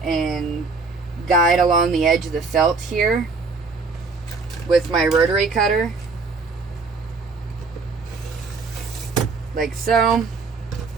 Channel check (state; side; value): quieter; left; 4.3 dB